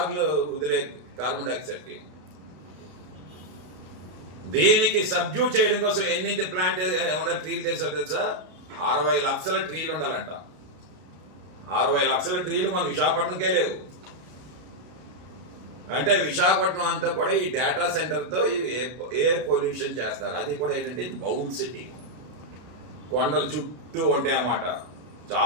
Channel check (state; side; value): late; left; 33 ms